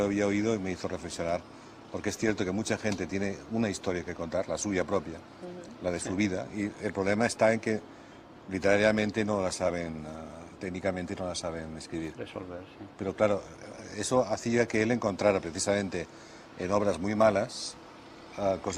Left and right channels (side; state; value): both; identical; correlation 1.00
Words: había oído y me hizo reflexionar, porque es cierto que mucha gente tiene una historia que contar, la suya propia, la de su vida, y el problema está en que literariamente no la saben, técnicamente no la saben escribir. Resolver, sí. Pero claro, eso hacía que él encontrara precisamente en obras muy malas